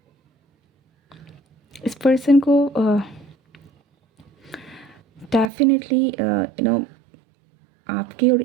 इस पर्सन को डेफिनेटली आपके और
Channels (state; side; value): drops out; left; at 5.5 s